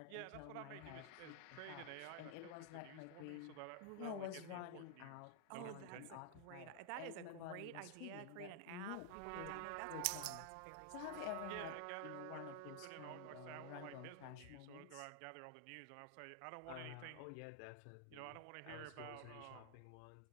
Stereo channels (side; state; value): both; different; correlation 0.00